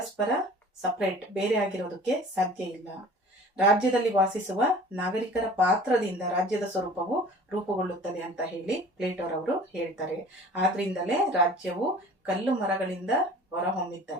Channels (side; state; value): both; normal; correlation 0.45